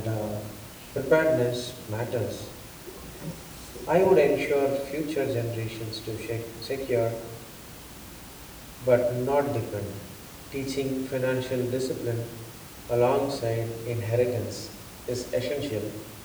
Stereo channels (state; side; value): identical; both; correlation 1.00